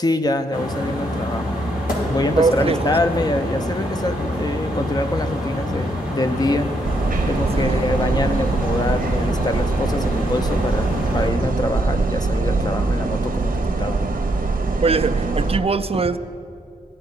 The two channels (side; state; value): both; normal; correlation 0.75